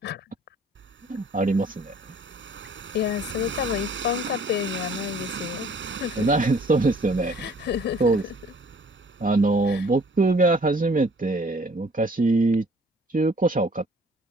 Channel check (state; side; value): normal; both; correlation 0.56